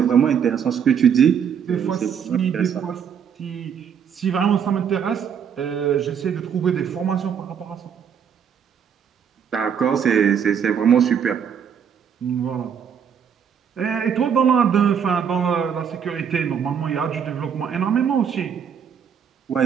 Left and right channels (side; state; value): left; quieter; 7.7 dB